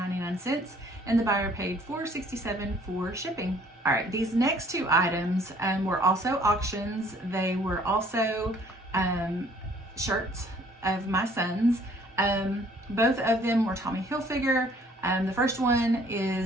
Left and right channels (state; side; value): normal; both; correlation 0.58